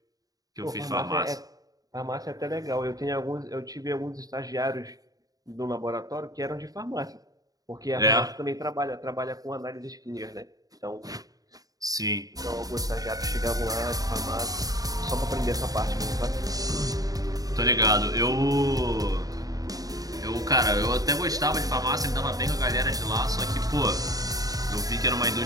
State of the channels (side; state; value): left; late; 0.18 ms